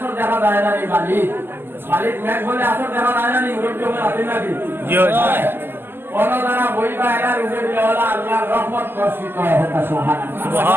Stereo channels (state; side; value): late; left; 0.10 ms